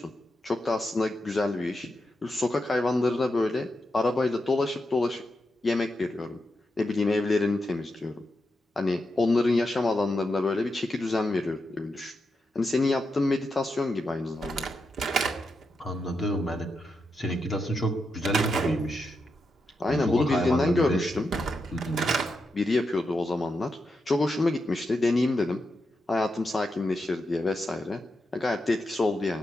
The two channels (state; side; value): normal; both; correlation 0.86